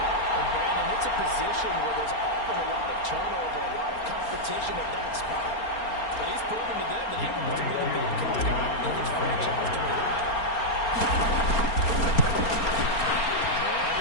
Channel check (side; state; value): right; late; 4.3 ms